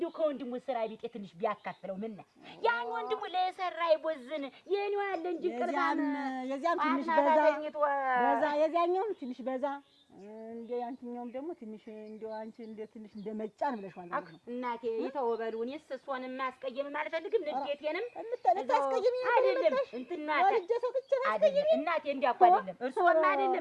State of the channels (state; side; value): identical; both; correlation 1.00